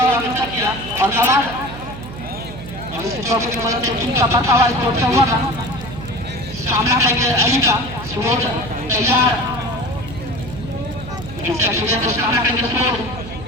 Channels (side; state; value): right; noise; hum, 12 dB below the sound